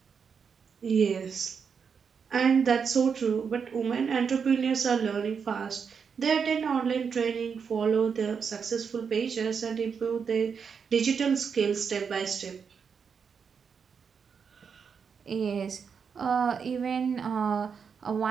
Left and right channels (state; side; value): quieter; left; 6.3 dB